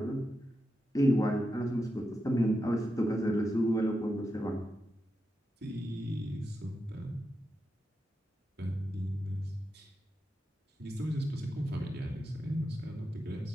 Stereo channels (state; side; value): normal; both; correlation 0.88